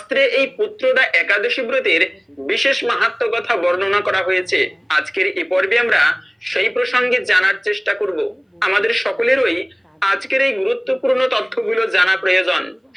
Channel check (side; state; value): both; identical; correlation 1.00